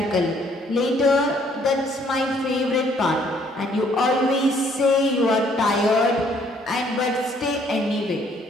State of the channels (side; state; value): both; normal; correlation 0.64